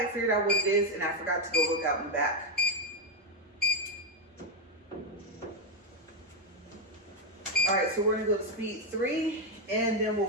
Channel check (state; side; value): normal; both; correlation 0.04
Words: figured out what it is, and I forgot to go look out in the back. All right, so we're gonna go to speed 3, and then we'll